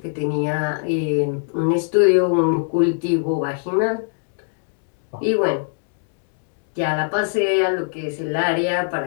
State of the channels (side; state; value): right; silent; 64 dB below the other